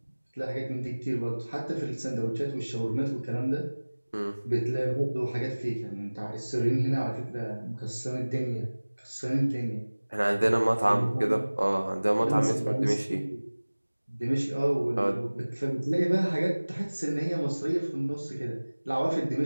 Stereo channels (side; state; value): both; inverted; correlation -1.00